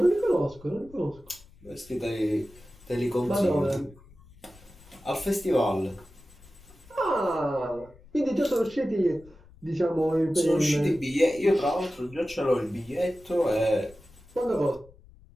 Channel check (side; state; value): left; noise; rumble, 24 dB below the sound